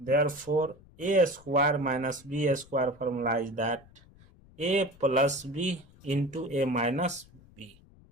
a square minus b square formula is that a plus b into a minus b.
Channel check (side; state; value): left; noise; rumble, 25 dB below the sound